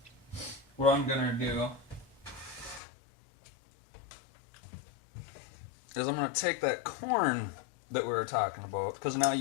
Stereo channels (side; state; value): right; drops out; at 2.8 s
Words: what I'm gonna do is I'm gonna take that corn that we were talking about, because now